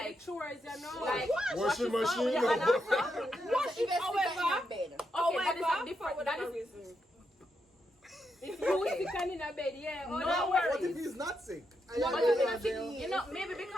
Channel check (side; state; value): both; normal; correlation 0.83